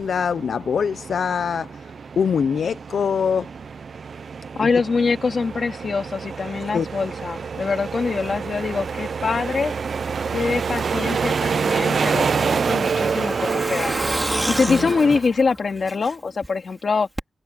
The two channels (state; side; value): normal; both; correlation 0.87